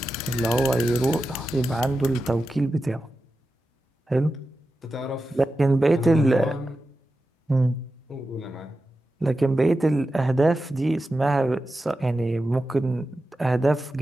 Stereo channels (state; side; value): normal; both; correlation 0.91